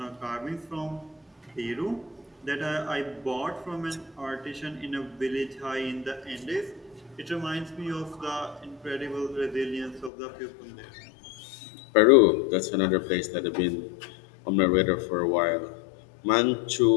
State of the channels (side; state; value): right; drops out; at 10.1 s